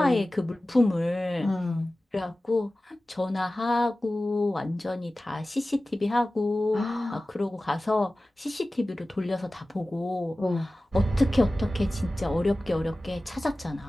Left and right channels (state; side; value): normal; both; correlation 0.96